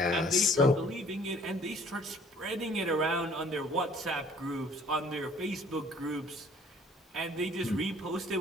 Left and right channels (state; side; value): normal; both; correlation 0.55